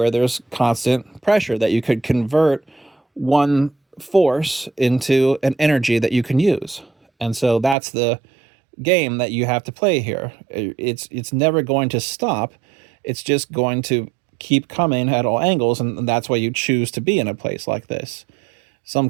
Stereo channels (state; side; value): drops out; left; at 7.8 s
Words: there's constant pressure that you could convert one force into an energy that you can use. And so that's the game that you have to play here. It's never going to stop. It's just going to keep coming at all angles, and that's why you choose to be in a place like this. Some